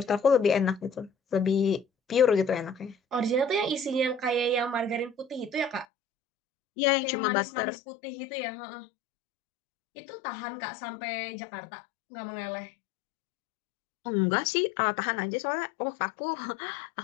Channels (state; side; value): drops out; right; at 5.9 s